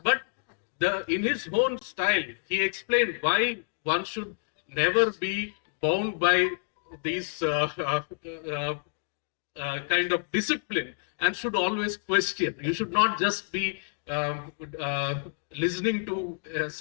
But in his own style, he explained why one should never be bound by these kind of discipline and should always question. You should not just be listening to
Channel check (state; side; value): silent; right; digital silence